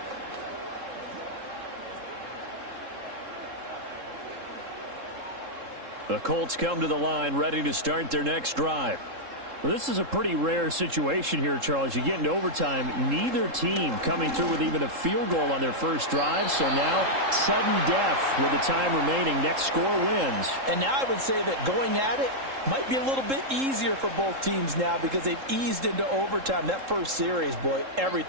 The Colts come to the line ready to start their next drive. Well, this is a pretty rare situation here, Charles. You get into overtime, neither team coming through with even a field goal on their first drive. So now, sudden death with the time remaining. Next score wins. And now I would say that going at it might be a little bit easier for both teams now because they've eased into overtime. That first series, boy,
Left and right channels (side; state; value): left; late; 3.7 ms